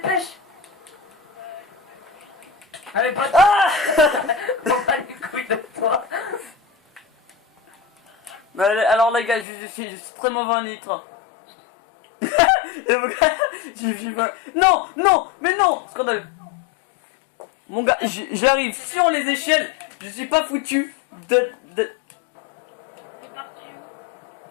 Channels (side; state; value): right; drops out; at 9.5 s